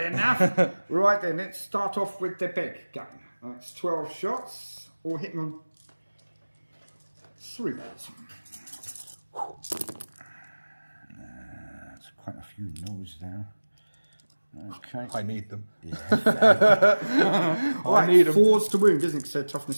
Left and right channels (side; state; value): both; inverted; correlation -1.00